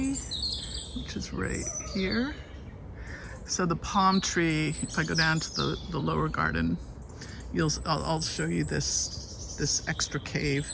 which is right here. So the palm tree, if I go down to the lower garden, I'll show you this extra cave.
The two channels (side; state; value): both; identical; correlation 1.00